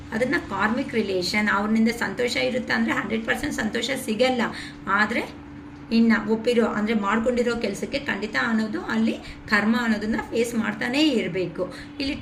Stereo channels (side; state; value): both; identical; correlation 1.00